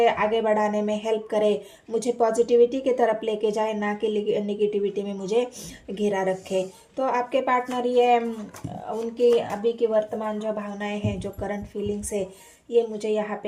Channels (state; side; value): identical; both; correlation 1.00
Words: आगे बढ़ाने में हेल्प करे, मुझे पॉजिटिविटी की तरफ लेके जाए, ना कि निगेटिविटी में मुझे घिरा रखे। तो आपके पार्टनर ये उनकी अभी की वर्तमान जो भावनाएं हैं, जो करंट फीलिंग्स है, ये मुझे यहाँ